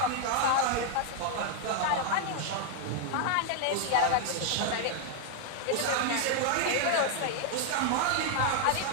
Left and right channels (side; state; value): both; different; correlation 0.00